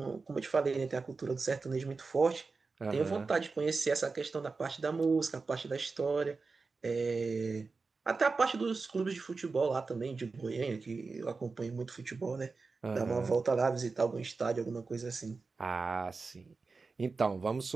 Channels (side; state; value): left; quieter; 4.2 dB